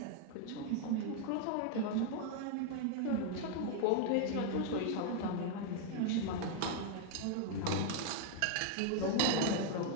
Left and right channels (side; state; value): both; different; correlation 0.00